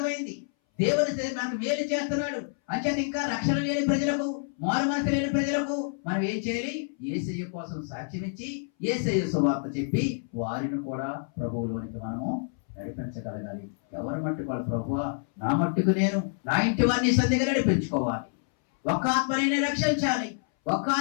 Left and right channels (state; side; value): silent; right; 60 dB below the other